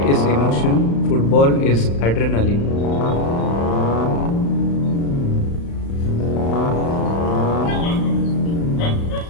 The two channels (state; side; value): late; right; 35 ms